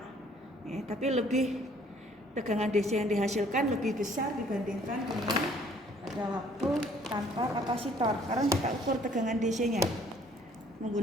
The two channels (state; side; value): normal; both; correlation 0.59